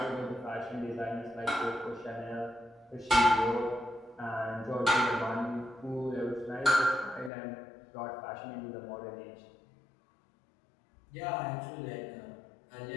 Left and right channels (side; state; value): right; drops out; at 7.3 s